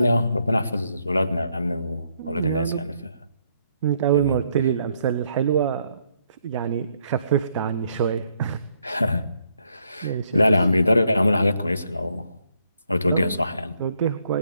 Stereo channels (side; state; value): both; inverted; correlation -0.73